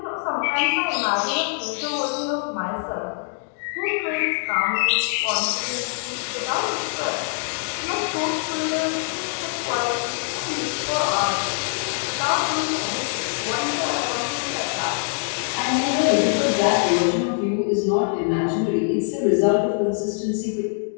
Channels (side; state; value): right; silent; 63 dB below the other